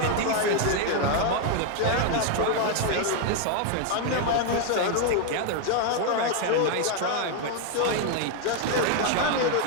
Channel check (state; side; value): different; both; correlation 0.01